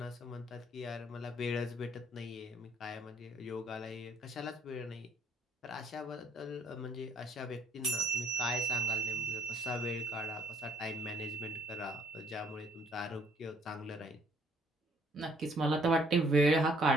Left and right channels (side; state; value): both; normal; correlation 0.61